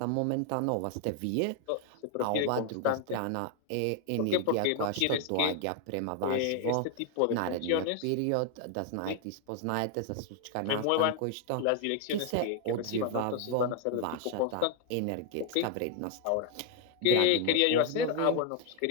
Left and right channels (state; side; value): different; both; correlation 0.00